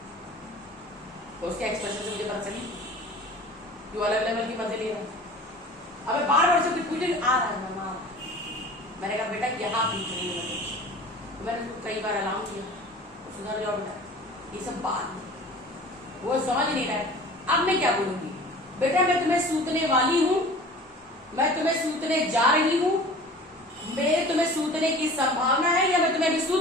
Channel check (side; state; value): both; normal; correlation 0.42